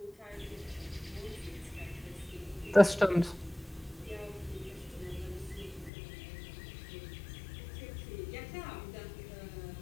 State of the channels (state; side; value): drops out; right; at 5.9 s